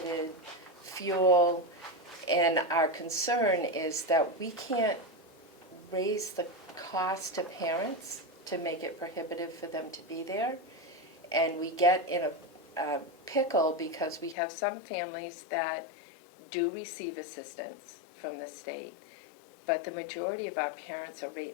fuel, and our concern is that we can't raise the cost to parents to make it prohibitive for them to be there. And we get in a pickle because we have some families that do receive assistance from the state, but the majority of our parents are right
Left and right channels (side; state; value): right; drops out; at 14.4 s